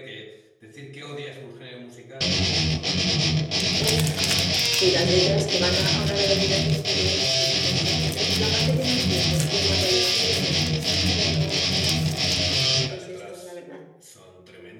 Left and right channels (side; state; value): both; identical; correlation 1.00